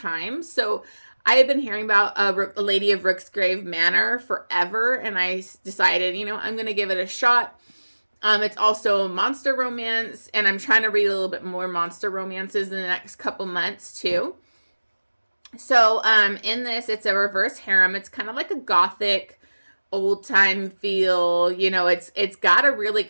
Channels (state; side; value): inverted; both; correlation -1.00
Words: So I have been hearing about a Lady of Rooksgrave Manor forever. And I decided, I'm going to give it a shot. It's also a monster romance. And I'm trying to read a little bit more monster romances in the next couple months too. So in this, it's a reverse harem. It's kind of like a gothic old time feel. It's got a really